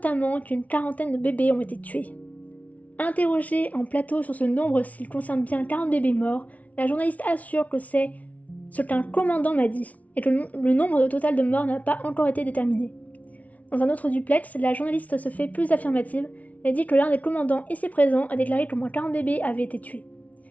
qu'une quarantaine de bébés ont été tués. Interrogée en plateau sur ce nombre s'il concerne bien 40 bébés morts, la journaliste assure que c'est ce qu'un commandant m'a dit, et que le nombre total de morts n'a pas encore été déterminé. Dans un autre duplex, la journaliste se fait plus affirmative et dit que l'un des commandants ici présents a déclaré qu'au moins 40 bébés avaient été tués.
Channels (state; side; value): late; right; 0.070 ms